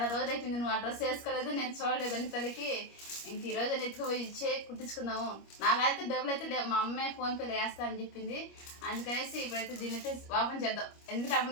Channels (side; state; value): right; late; 25 ms